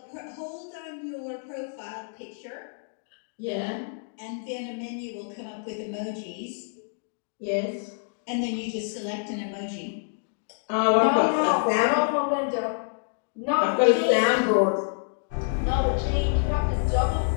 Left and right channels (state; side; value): silent; right; digital silence